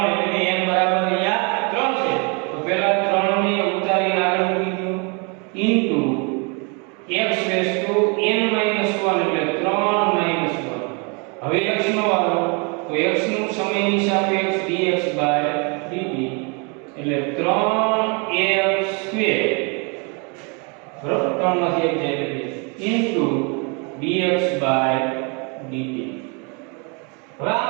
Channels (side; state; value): left; quieter; 33.2 dB